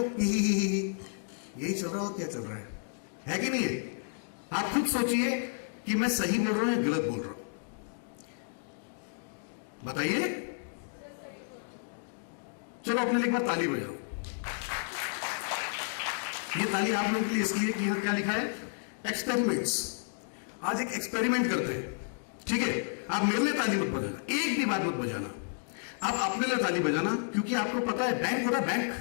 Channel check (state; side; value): silent; right; digital silence